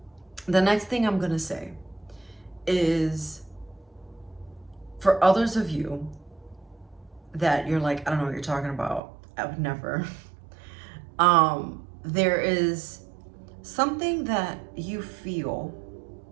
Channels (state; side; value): drops out; left; at 9.0 s